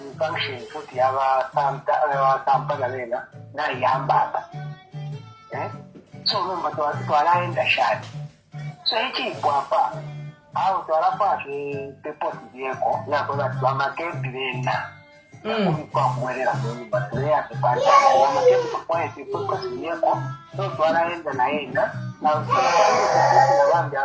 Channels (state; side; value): identical; both; correlation 1.00